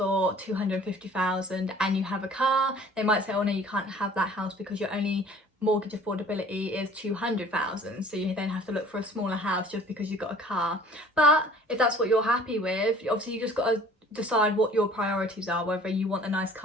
250,000 and you have a car, they might say, oh no, you can't have that house because your only mortgage affordability is 200,000, so you then have to look for a smaller house just because you've got a car. But if that's what you're happy with, obviously you just got to decide what your priorities are, whether you want a nice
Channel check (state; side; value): normal; both; correlation 0.50